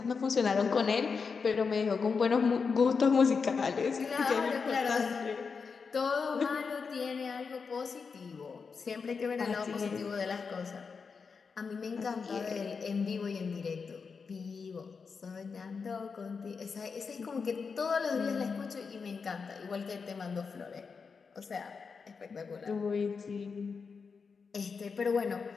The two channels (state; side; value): quieter; right; 5.3 dB